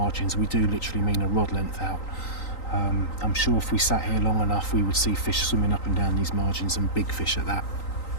we do literally mean a rod length out. I'm sure if we sat here long enough, we would see fish swimming up and down these margins, and big fish at that.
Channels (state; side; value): late; right; 3.9 ms